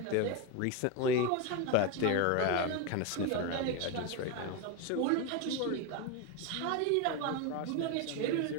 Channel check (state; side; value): different; both; correlation 0.03